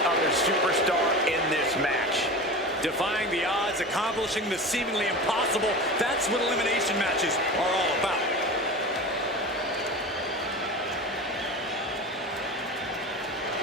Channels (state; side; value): normal; both; correlation 0.30